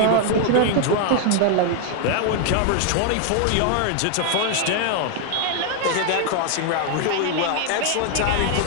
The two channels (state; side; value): different; both; correlation 0.00